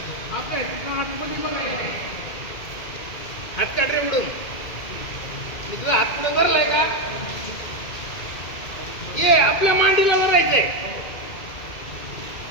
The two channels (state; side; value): late; right; 2.2 ms